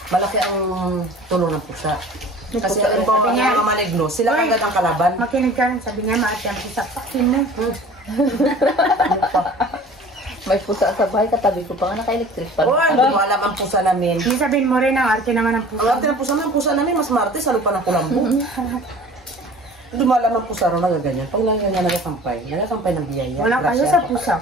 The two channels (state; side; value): normal; both; correlation 0.45